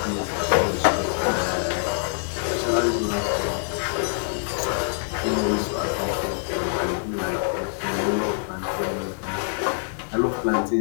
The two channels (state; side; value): silent; right; digital silence